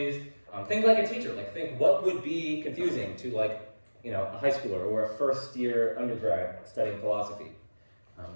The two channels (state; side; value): inverted; both; correlation -1.00